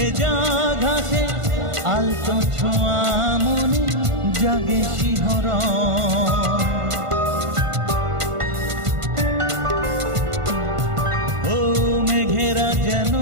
ঘাসে আলতো ছোঁয়া মনে জাগে শিহরণ। ও মেঘেরা যেন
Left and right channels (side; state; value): left; late; 1.5 ms